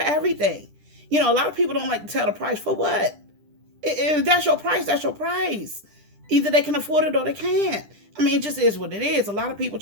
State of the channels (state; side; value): late; left; 10 ms